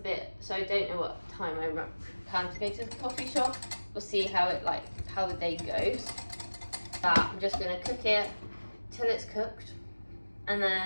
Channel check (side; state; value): both; inverted; correlation -1.00